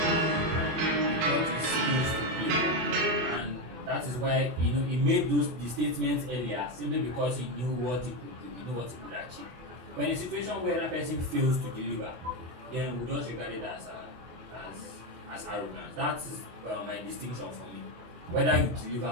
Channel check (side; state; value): left; late; 24 ms